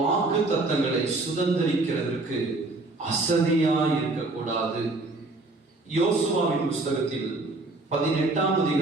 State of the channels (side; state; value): left; quieter; 3.1 dB